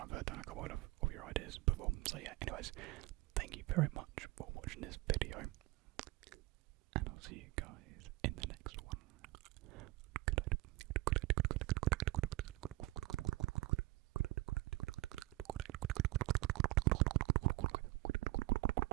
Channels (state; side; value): quieter; left; 20.3 dB